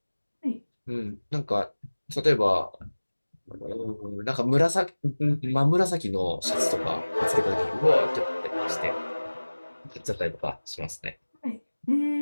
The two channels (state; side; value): inverted; both; correlation -1.00